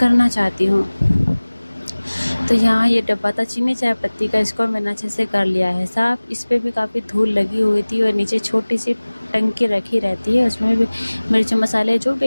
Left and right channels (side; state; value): both; inverted; correlation -1.00